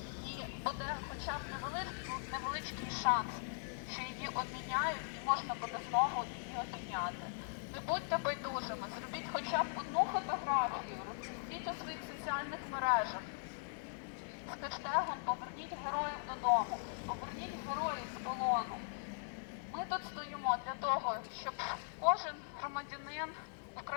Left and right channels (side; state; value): right; silent; 51 dB below the other